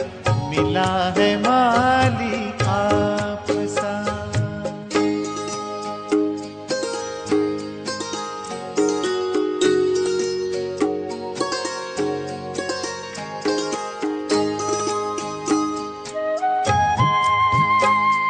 मिला है माली आप सा।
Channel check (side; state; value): both; identical; correlation 1.00